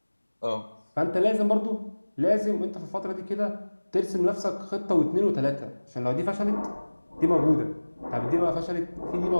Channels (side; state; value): both; inverted; correlation -1.00